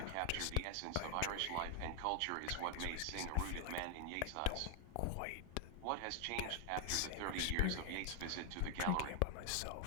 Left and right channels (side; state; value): both; different; correlation 0.00